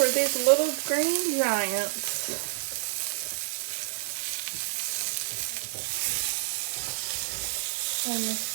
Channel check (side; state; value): left; silent; 59 dB below the other